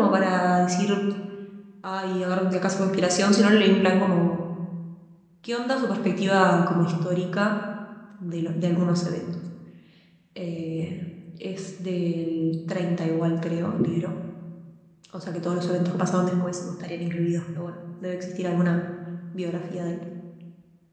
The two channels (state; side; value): identical; both; correlation 1.00